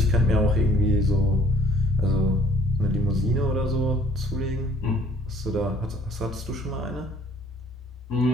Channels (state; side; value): normal; both; correlation 0.55